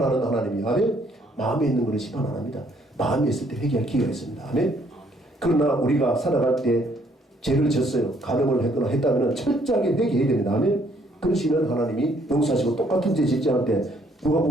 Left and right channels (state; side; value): normal; both; correlation 0.66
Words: 하나님이 아멘. 마음에 있는 것은 심판 안 합니다. 마음에 있을 때 회개할 기회가 있습니다. 아멘. 그러나 우리가 살아갈 때 죄를 졌어요. 가늠을 했거나 했다면 철저하게 회개해야 됩니다. 아멘. 그러시면 하나님이 용서하시고 똑같은 죄 짓지 않을 때